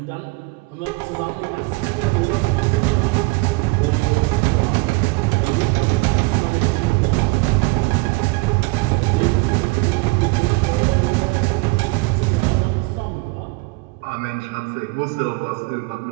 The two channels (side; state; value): left; quieter; 24.8 dB